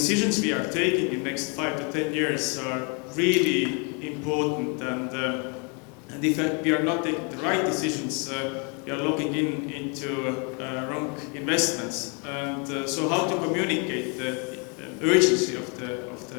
we are taking in the next 5 to 10 years are really important, and if we are not taking the right decisions, we are looking into wrong investments. And so how to communicate the urgency of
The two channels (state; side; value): quieter; right; 35.0 dB